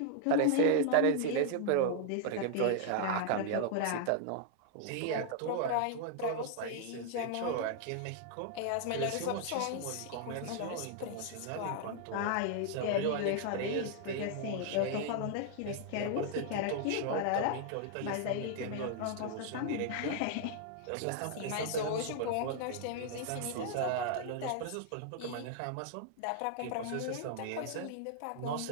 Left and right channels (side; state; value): both; different; correlation 0.00